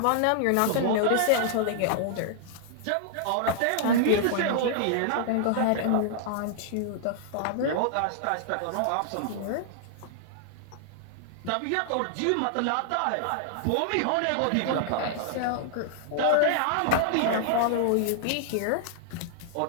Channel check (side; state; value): both; different; correlation -0.01